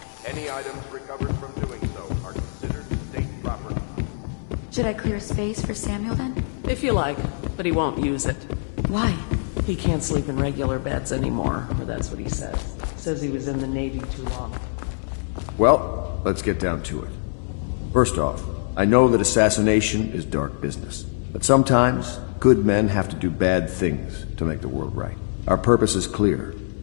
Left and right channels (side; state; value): right; silent; 63 dB below the other